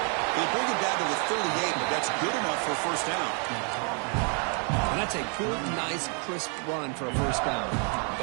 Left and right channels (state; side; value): quieter; left; 39.8 dB